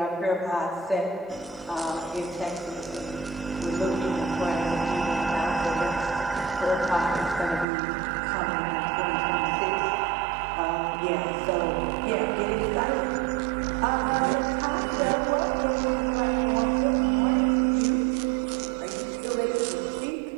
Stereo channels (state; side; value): drops out; left; at 7.7 s